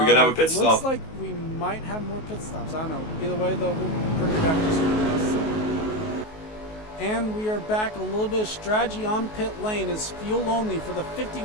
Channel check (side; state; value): right; late; 19 ms